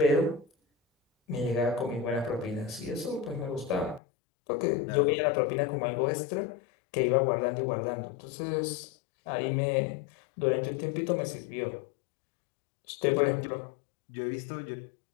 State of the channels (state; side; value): drops out; right; at 4.0 s